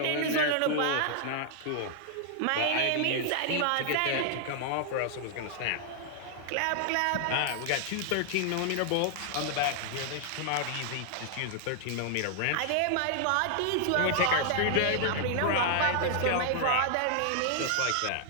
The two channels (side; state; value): both; different; correlation 0.00